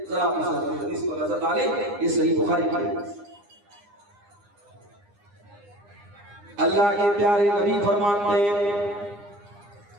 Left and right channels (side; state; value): left; late; 9.8 ms